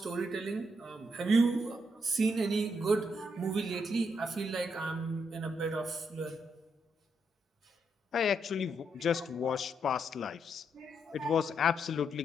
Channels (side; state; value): both; normal; correlation 0.78